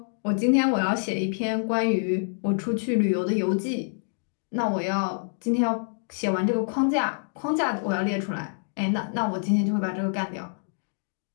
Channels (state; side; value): silent; right; digital silence